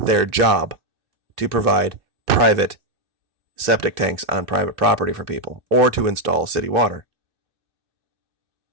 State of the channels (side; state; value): left; late; 2.6 ms